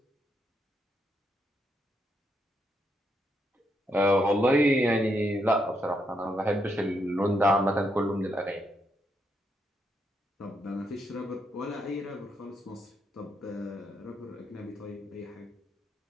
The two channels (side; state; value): both; normal; correlation 0.78